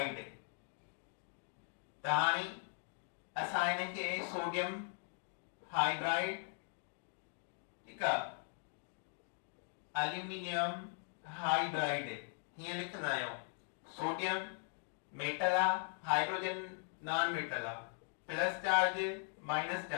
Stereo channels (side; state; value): right; silent; 51 dB below the other